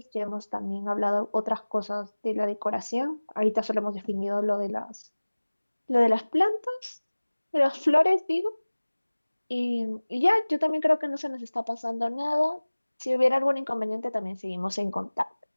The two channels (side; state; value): both; inverted; correlation -1.00